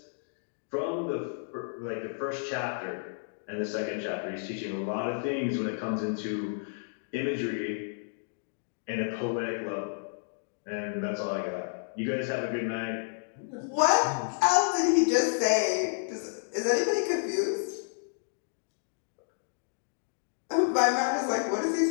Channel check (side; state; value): right; silent; digital silence